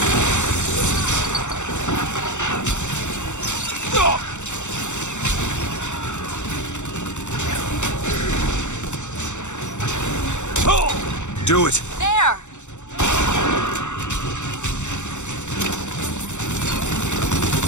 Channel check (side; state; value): right; late; 0.84 ms